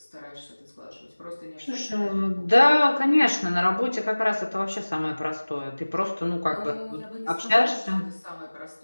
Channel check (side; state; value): both; inverted; correlation -1.00